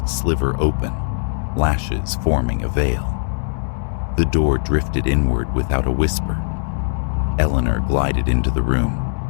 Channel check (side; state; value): right; silent; digital silence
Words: sliver open, lashes forming a veil. The door drifted inward without a whisper. Eleanor glided into the room,